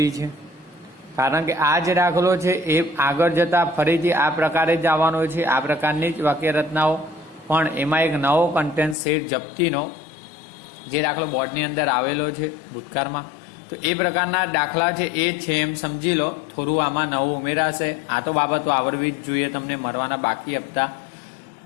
છે, કારણ કે આ જે દાખલો છે એ આગળ જતા ફરીથી આ પ્રકારે જ આવવાનો છે। આ પ્રકારની જ વાક્ય રચનાઓ, પણ એમાં એક નવો કન્ટેન્ટ શેર જપ્તીનો જે દાખલો બોર્ડની અંદર આવેલો છે ભૂતકાળમાં, તો એ પ્રકારના દાખલા છે એ છે એમ સમજી લો। થોડું આમાં નવું ઉમેરાશે। આ તો બાબતો આવડવી જ જોઈએ તમને, મરવાના બાકી હપ્તા।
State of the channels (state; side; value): drops out; right; at 9.0 s